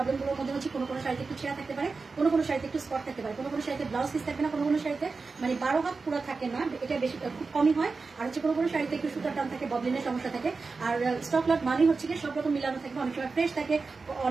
মধ্যে হচ্ছে কোনো শাড়িতে একটু ছেঁড়া থাকতে পারে, কোনো শাড়িতে একটু স্পট থাকতে পারে, কোনো শাড়িতে ব্লাউজ পিস থাকবে না, কোনো শাড়িতে মানে 12 হাত পুরো থাকে না, এটা বেশি খুব কমই হয়। আর হচ্ছে কোনো শাড়িতে একটু সুতার টান থাকে, ববলিনের সমস্যা থাকে। আর স্টক লট মানেই হচ্ছে গিয়ে সব রকম মিলানো থাকবে। অনেক সময় ফ্রেশ থাকে,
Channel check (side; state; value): left; quieter; 4.3 dB